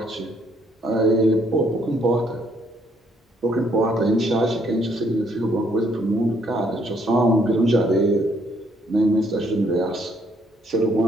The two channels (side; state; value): both; normal; correlation 0.68